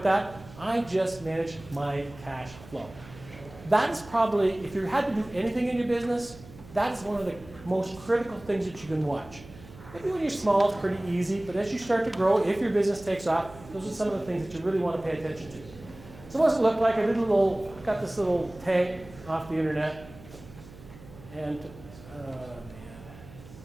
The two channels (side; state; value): right; noise; hum, 19 dB below the sound